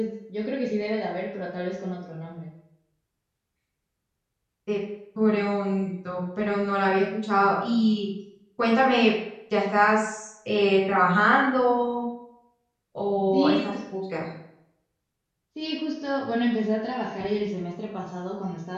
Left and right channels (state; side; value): identical; both; correlation 1.00